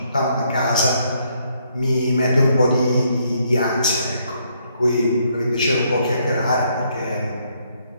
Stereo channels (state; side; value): inverted; both; correlation -0.71